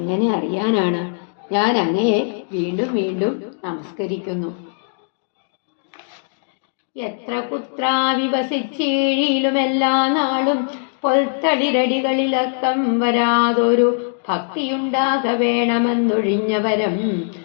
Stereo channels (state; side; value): silent; right; digital silence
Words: അറിയാനാണ്? ഞാൻ അങ്ങയെ വീണ്ടും വീണ്ടും നമസ്കരിക്കുന്നു. എത്ര കുത്രാവിവസിച്ചീഴിയിലും എല്ലാ നാളും പൊൽത്തളിരടികളിലക്കം വരാതൊരു ഭക്തിയുണ്ടാക വേണമെന്നൊഴിഞ്ഞവരം